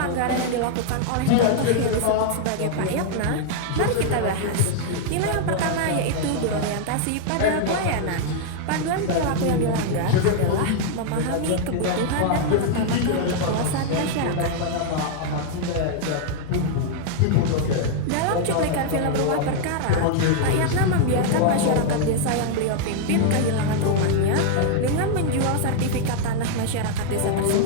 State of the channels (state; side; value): different; both; correlation -0.01